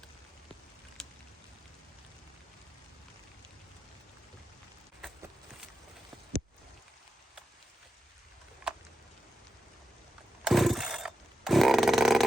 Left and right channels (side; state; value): both; normal; correlation 0.89